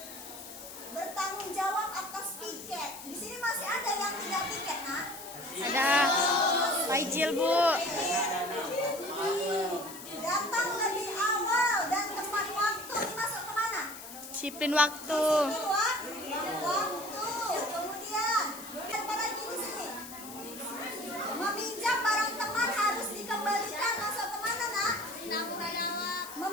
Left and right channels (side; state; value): left; noise; hiss, 13 dB below the sound